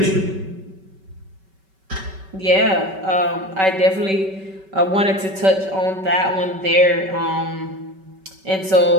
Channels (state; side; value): late; left; 5.2 ms